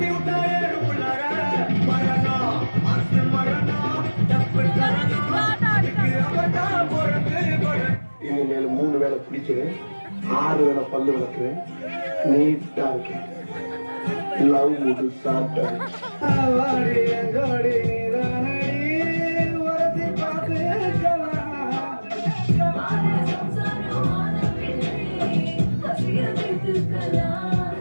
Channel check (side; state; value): both; inverted; correlation -1.00